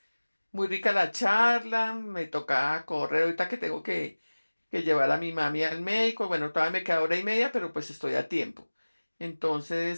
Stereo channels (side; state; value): both; inverted; correlation -1.00